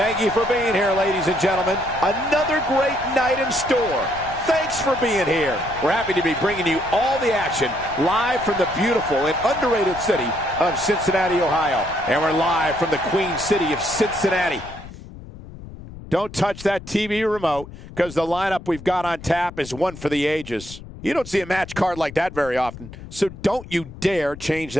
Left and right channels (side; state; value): left; noise; rumble, 15 dB below the sound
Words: you for being here, ladies and gentlemen. Another great night in store. Thanks for being here. We're happy to be bringing you all the action live from the beautiful and underrated city of Cincinnati, Ohio. And we're live from the Queen City of Cincinnati. Don't touch that TV remote, because the lineup we've got on tap is one for the ages. You don't see a match card like that very often, so don't you dare change